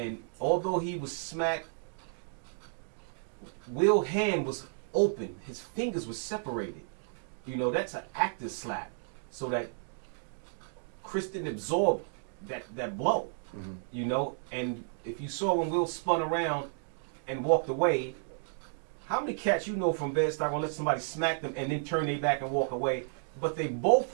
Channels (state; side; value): silent; left; digital silence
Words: although he was smacked, Will's hand was open, his fingers were separated. You know, that's an active slap, so that Chris didn't absorb that blow. Mm-hmm. You know, and if you saw when Will spun around and walked away, how many cats you know from Bed-Stuy gonna let somebody smack them and then turn their back and walk away? But they